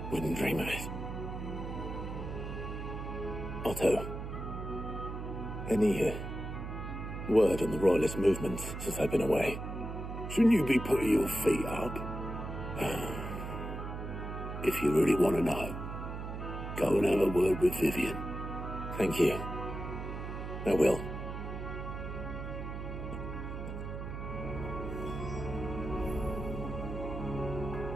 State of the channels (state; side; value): noise; right; hum, 6 dB below the sound